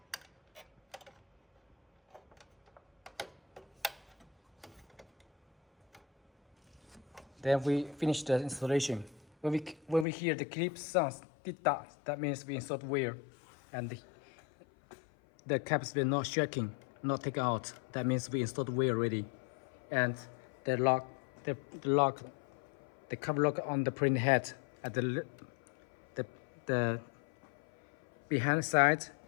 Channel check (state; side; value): drops out; right; at 10.1 s